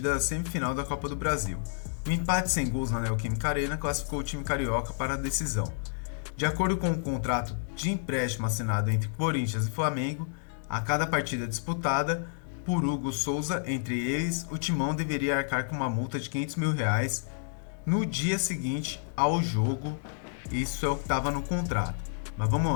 da semifinal da Copa do Brasil. O empate sem gols na Neoquímica Arena classificou o time carioca para a decisão. De acordo com o contrato de empréstimo assinado entre Corinthians e Flamengo, a cada partida disputada por Hugo Souza entre eles, o timão deveria arcar com uma multa de 500 mil reais no dia seguinte ao jogo. Isso é o que estava no contrato. Mas vamos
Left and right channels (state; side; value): silent; right; digital silence